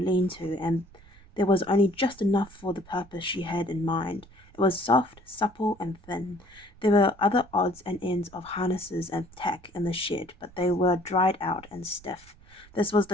and there was only just enough for the purpose she had in mind. It was soft, supple, and thin. There were other odds and ends of harnesses and tack in the shed, but they were dried out and stiff. This was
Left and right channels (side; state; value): right; noise; rumble, 24 dB below the sound